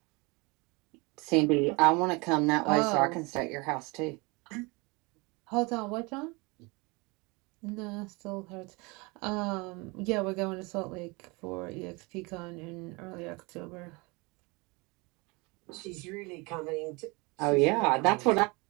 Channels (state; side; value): quieter; left; 26.7 dB